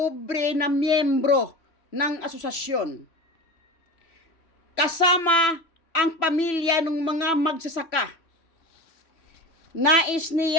na miyembro ng asosasyon. Kasama ang pamilya ng mga magsasaka. Nais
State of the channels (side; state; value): right; late; 3.0 ms